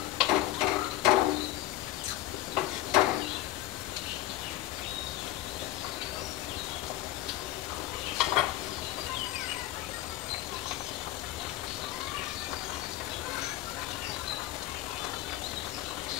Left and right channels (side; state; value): right; quieter; 15.2 dB